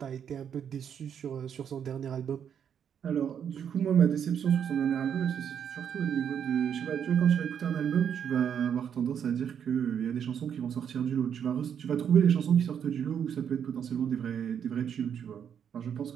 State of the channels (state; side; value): quieter; left; 8.3 dB